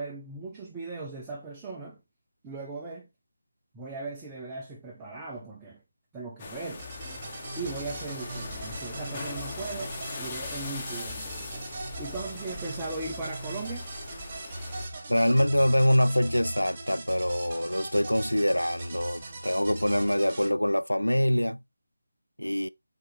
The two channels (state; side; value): inverted; both; correlation -0.96